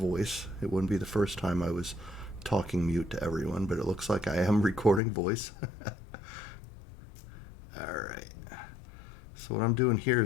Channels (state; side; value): drops out; right; at 5.0 s